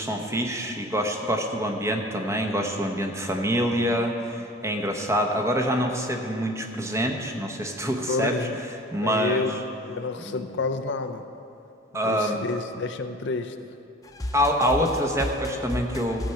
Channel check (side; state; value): both; normal; correlation 0.42